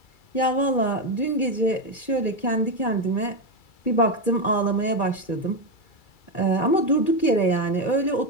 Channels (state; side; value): late; right; 2.3 ms